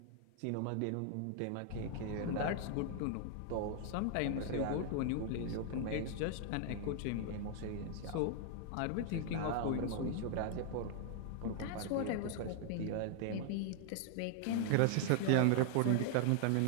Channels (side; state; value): both; different; correlation 0.00